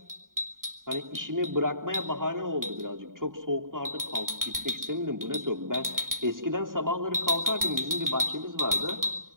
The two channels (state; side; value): late; left; 0.90 ms